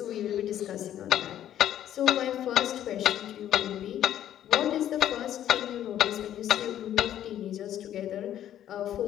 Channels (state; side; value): quieter; right; 11.3 dB